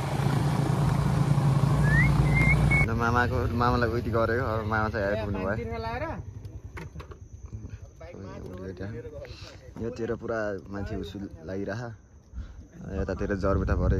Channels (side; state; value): both; identical; correlation 1.00